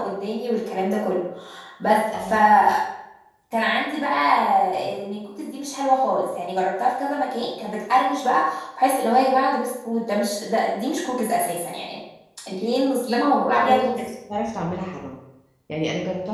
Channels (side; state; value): both; identical; correlation 1.00